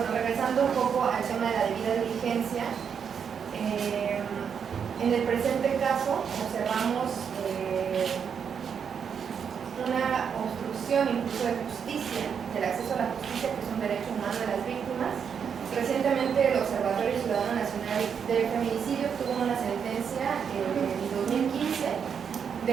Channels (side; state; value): left; quieter; 7.1 dB